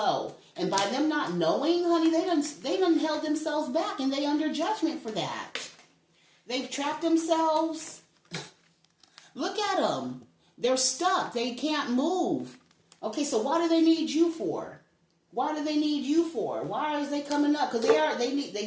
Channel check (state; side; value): identical; both; correlation 1.00